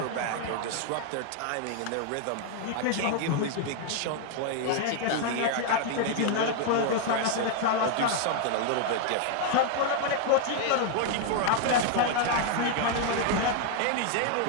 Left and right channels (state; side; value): different; both; correlation 0.00